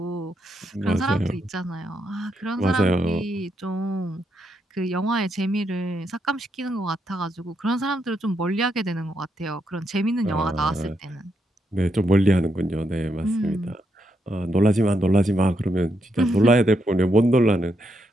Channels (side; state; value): both; normal; correlation 0.80